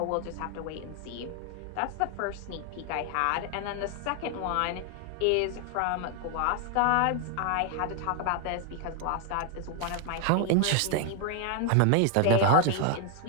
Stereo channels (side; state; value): both; different; correlation 0.00